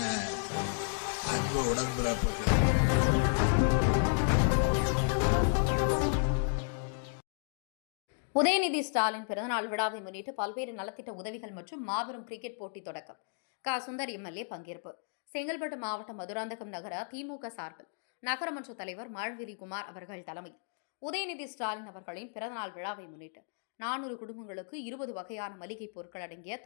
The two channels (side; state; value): right; silent; digital silence